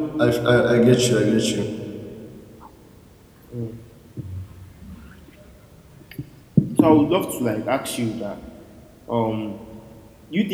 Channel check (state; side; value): identical; both; correlation 1.00